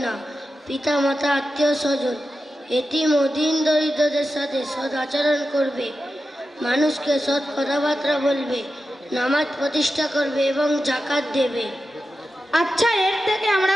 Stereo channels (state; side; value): normal; both; correlation 0.91